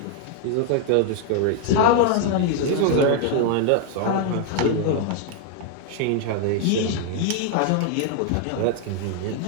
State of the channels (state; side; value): different; both; correlation 0.00